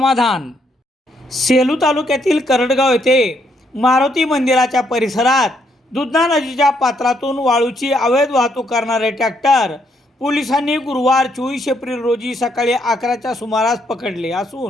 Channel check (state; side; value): normal; both; correlation 0.74